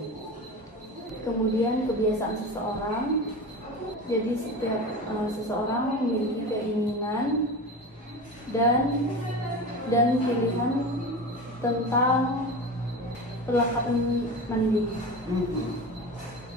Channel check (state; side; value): normal; both; correlation 0.29